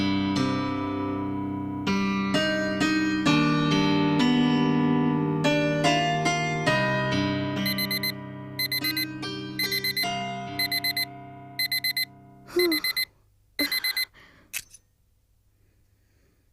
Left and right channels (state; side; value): identical; both; correlation 1.00